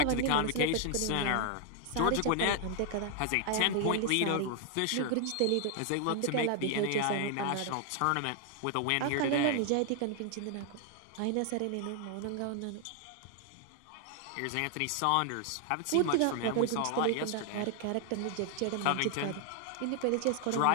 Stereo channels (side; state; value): both; different; correlation 0.00